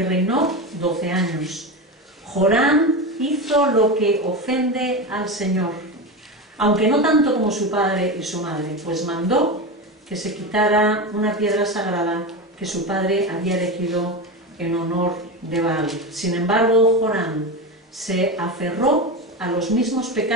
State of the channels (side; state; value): both; normal; correlation 0.20